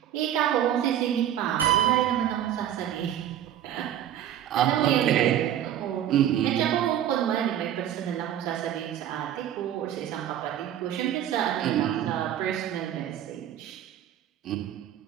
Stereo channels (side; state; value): left; quieter; 11.0 dB